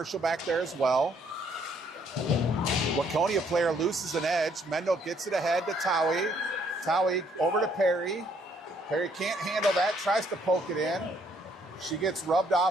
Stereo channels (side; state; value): both; normal; correlation 0.67